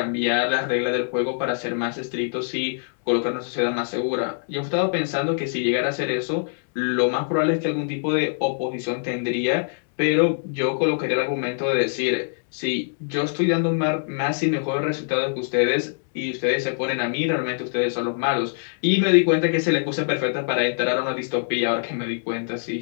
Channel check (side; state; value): right; silent; digital silence